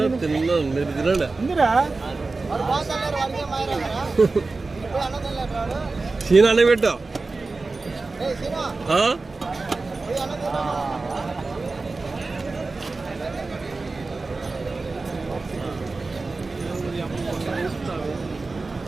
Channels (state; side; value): quieter; left; 3.7 dB